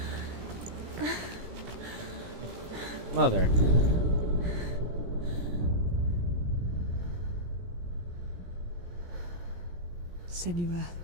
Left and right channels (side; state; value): left; late; 17 ms